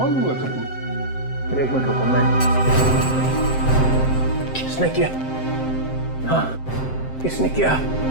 लूंगा सर। एक मिनट रुको, मैं किसने किया? हाँ, किसने किया?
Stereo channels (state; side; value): late; right; 7.7 ms